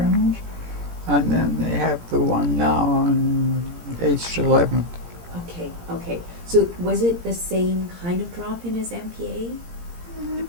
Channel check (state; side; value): late; left; 17 ms